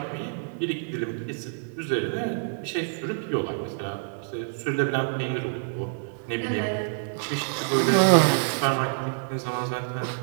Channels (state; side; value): silent; left; digital silence